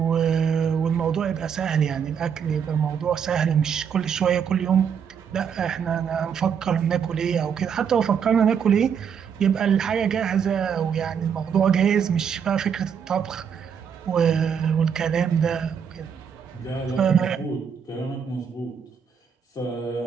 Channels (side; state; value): left; quieter; 7.3 dB